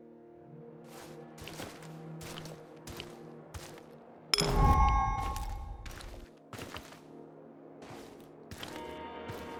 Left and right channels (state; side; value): identical; both; correlation 1.00